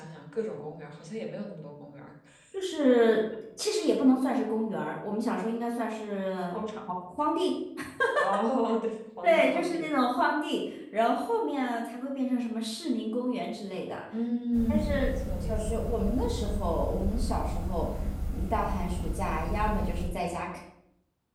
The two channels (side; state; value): both; identical; correlation 1.00